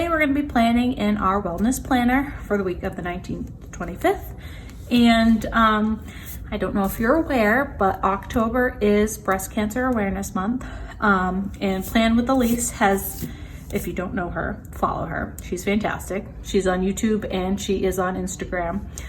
we're going to be planning in our wellness planner for the week of the 19th to 25th, and I don't know if you're aware, but October is Breast Cancer Awareness Month. And Plan with Ilysse has, if you don't know her, follow her. She's fantastic. She's on YouTube and she is on Instagram.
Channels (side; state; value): both; identical; correlation 1.00